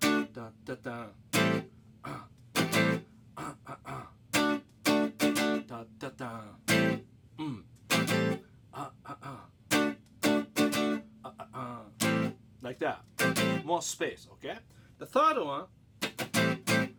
Da da da. Da da da. Like that. More space, okay? The third one.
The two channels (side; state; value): both; identical; correlation 1.00